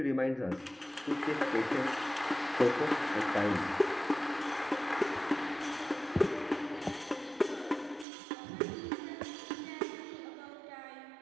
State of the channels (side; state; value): left; drops out; at 8.1 s